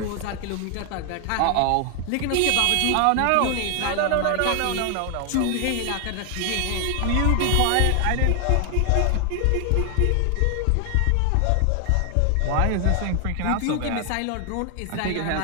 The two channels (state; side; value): different; both; correlation 0.00